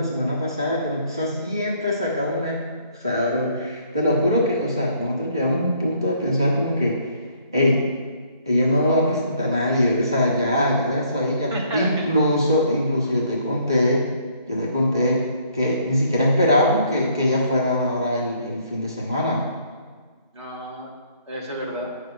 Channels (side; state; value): both; inverted; correlation -0.65